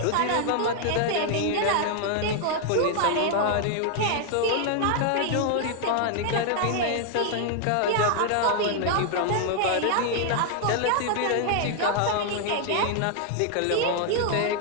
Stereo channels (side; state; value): both; different; correlation 0.00